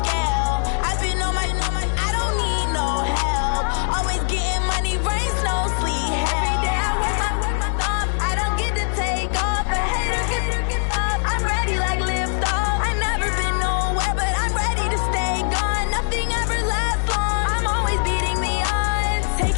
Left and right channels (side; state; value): right; silent; digital silence